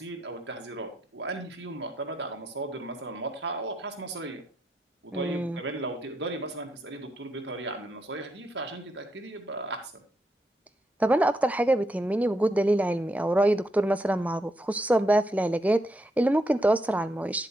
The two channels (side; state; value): both; normal; correlation 0.79